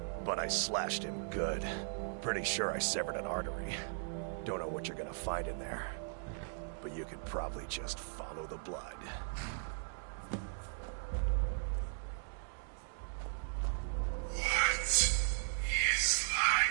But I slashed him good. Pretty sure I severed an artery. Don't know what you're gonna find in there. But you can probably just follow the blood. What is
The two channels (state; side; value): silent; left; digital silence